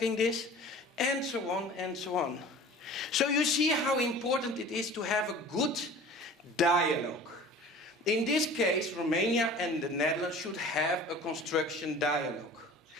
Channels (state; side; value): normal; both; correlation 0.42